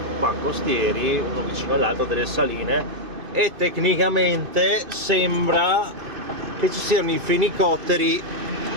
qua costieri, uno vicino all'altro, delle saline, e tecnicamente sembra che ci siano i fenicotteri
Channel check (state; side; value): late; left; 2.5 ms